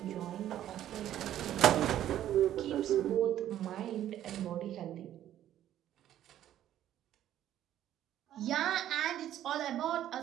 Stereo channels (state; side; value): quieter; left; 11.9 dB